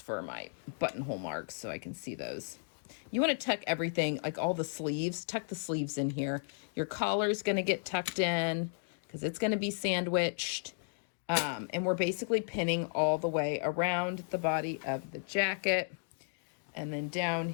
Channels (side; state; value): right; silent; digital silence